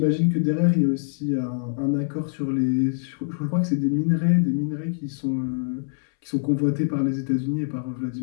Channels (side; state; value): right; silent; 62 dB below the other